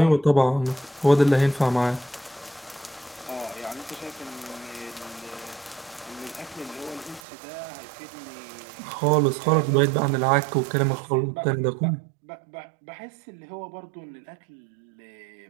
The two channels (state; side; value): drops out; left; at 7.2 s